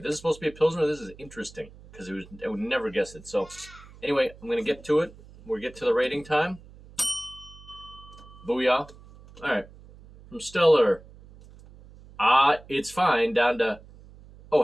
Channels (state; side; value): noise; right; hum, 21 dB below the sound